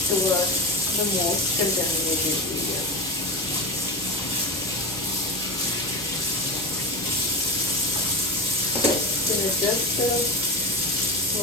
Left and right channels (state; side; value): normal; both; correlation 0.22